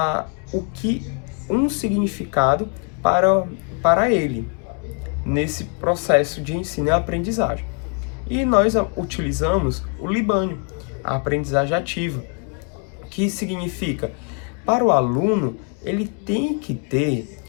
um significado para ele nesse processo de ensino e aprendizagem. E nós utilizamos o Libânio, a aprendizagem ativa, que significa, para o aluno, ele tem que ter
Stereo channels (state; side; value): quieter; right; 37.4 dB